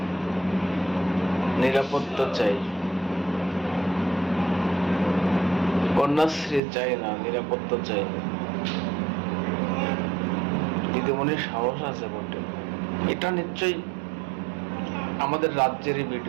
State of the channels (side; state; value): left; drops out; at 6.6 s